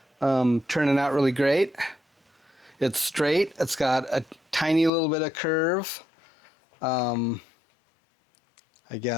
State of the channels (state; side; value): drops out; right; at 4.9 s